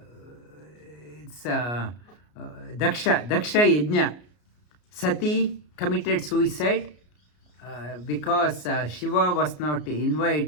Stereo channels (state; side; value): late; right; 33 ms